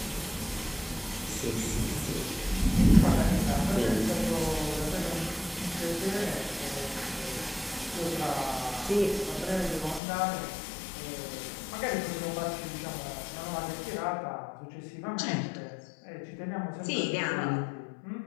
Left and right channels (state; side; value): drops out; right; at 10.0 s